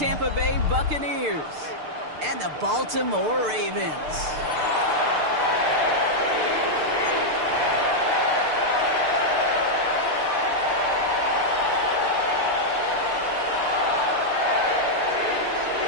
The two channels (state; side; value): late; left; 6.7 ms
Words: Bay Buccaneers and the Baltimore Ravens.